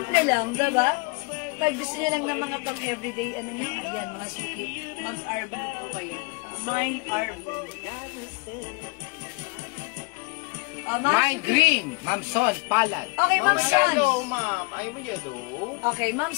lang, diba? Pag gusto niyo lang ng mga pang-everyday, ano na, ayan, mga suki. Mag-R Blue po kayo. Mine R Blue. O, mga Mine suki. green, Ma'am Son, palad. Okay, Ma'am Son. ma'am. Ayaw mo yellow. Okay, Ma'am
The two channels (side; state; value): right; quieter; 29.4 dB